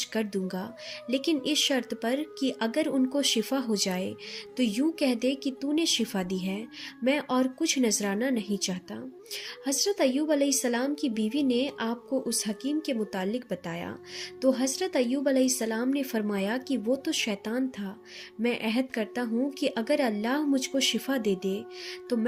کر دوں گا، لیکن اس شرط پر کہ اگر ان کو شفا ہو جائے تو یوں کہہ دے کہ تو نے شفا دی ہے، میں اور کچھ نذرانہ نہیں چاہتا۔ حضرت ایوب علیہ السلام کی بیوی نے آپ کو اس حکیم کے متعلق بتایا تو حضرت ایوب علیہ السلام نے فرمایا کہ وہ تو شیطان تھا، میں عہد کرتا ہوں کہ اگر اللہ مجھ کو شفا دے دے تو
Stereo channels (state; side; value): identical; both; correlation 1.00